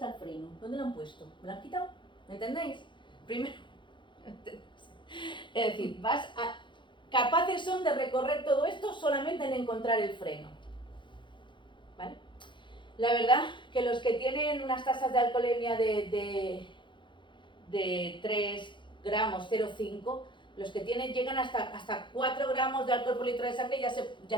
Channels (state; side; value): late; right; 0.23 ms